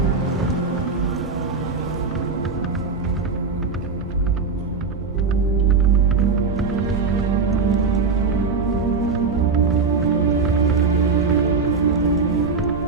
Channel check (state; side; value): quieter; left; 4.7 dB